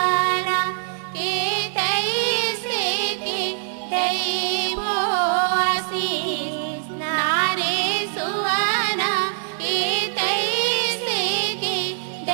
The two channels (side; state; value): left; silent; digital silence